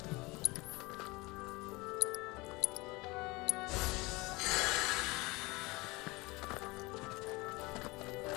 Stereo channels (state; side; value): quieter; right; 23.6 dB